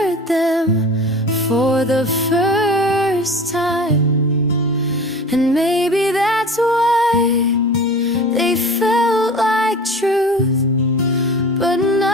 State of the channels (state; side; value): normal; both; correlation 0.37